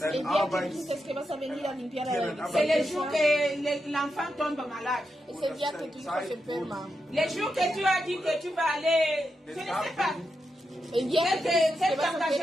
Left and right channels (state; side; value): normal; both; correlation 0.86